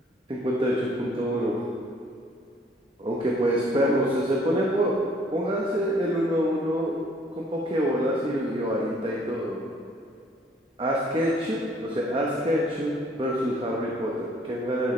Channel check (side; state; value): both; normal; correlation 0.60